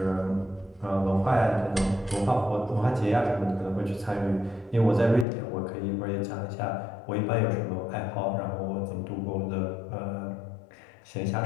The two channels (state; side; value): drops out; right; at 5.2 s